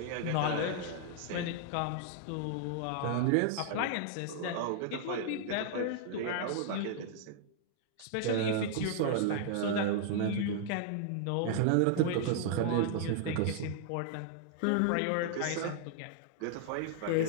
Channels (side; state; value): both; different; correlation -0.01